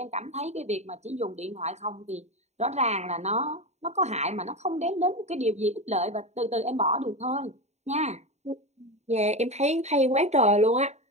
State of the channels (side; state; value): left; late; 0.32 ms